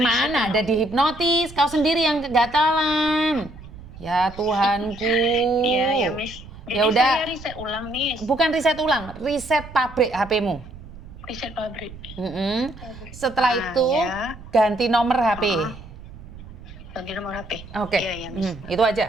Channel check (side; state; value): right; noise; rumble, 16 dB below the sound